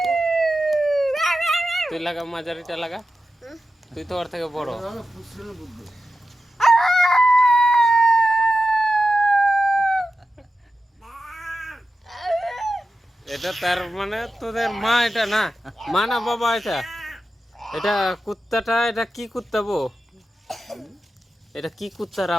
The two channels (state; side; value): normal; both; correlation 0.91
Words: তুই লাগা, মাঝারিটা লাগা, তুই তো ওর থেকে বড়। এটা তার মানে তোদের মা, এটা না মা না বাবা, এটা এটা কুত্তাটা, এটা কি কুত্তা বো? এটা কি কুত্তার